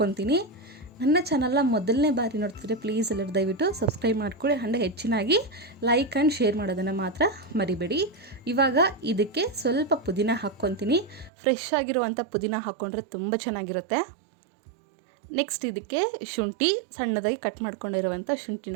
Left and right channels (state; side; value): drops out; left; at 11.3 s